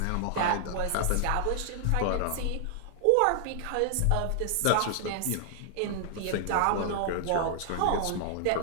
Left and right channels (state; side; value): different; both; correlation 0.00